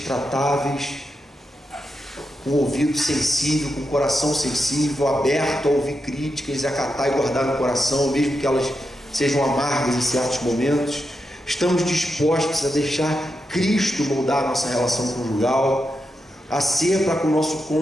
tratáveis, com o ouvido sensível, com o coração sensível, aberto a ouvir críticas, acatar e guardar no coração, mesmo que elas sejam amargas em certos momentos? Estamos dispostos a deixar Cristo moldar a nossa relação conjugal, a ser para com o nosso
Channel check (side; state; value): both; normal; correlation 0.86